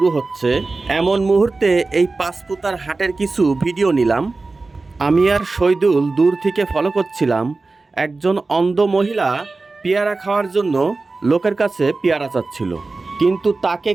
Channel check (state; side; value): quieter; left; 3.6 dB